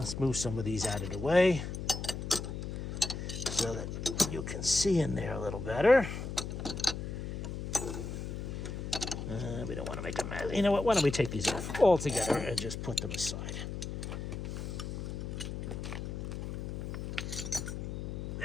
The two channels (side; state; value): left; noise; hum, 5 dB below the sound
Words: move some of these out of the way so that you can see in there a little better. We don't want to make a mess. You know what? Why don't we take these off all together and just put them aside.